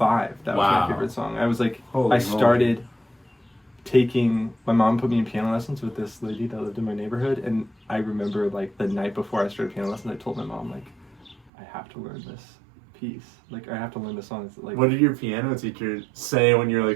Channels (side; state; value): left; drops out; at 11.5 s